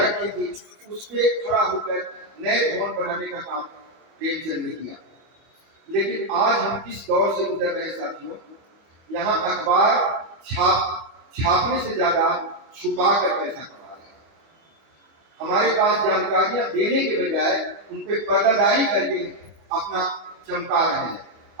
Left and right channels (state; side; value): late; left; 25 ms